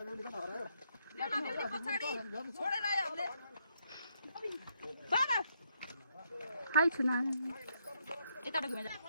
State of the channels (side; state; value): both; inverted; correlation -0.75